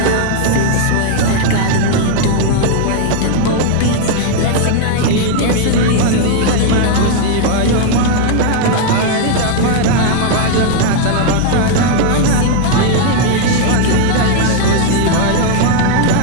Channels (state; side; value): different; both; correlation 0.00